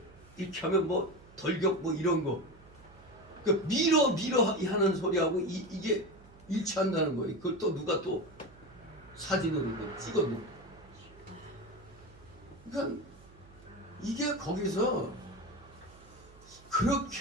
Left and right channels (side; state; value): right; noise; hum, 24 dB below the sound